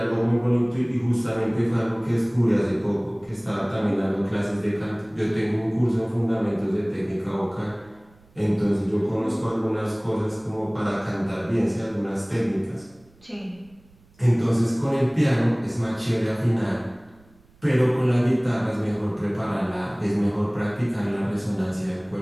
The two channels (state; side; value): noise; right; rumble, 30 dB below the sound